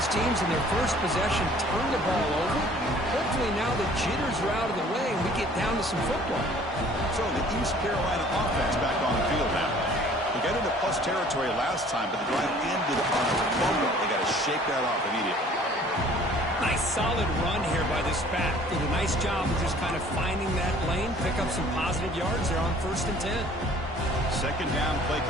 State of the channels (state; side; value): normal; both; correlation 0.53